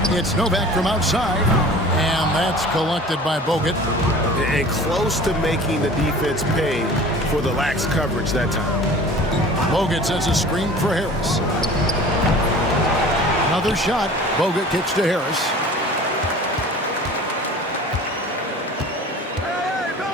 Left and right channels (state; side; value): normal; both; correlation 0.43